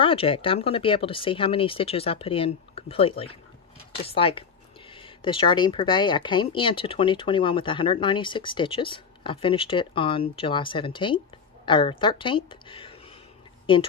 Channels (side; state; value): right; quieter; 6.2 dB